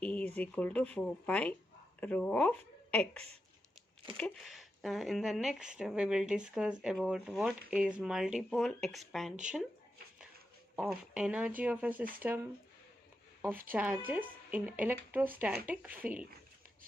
E is equal to 4 pi rho of x. Okay. In the next we will discuss about what is multipole expansion of energy of a system of charges in electrostatic field.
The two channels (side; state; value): both; normal; correlation 0.87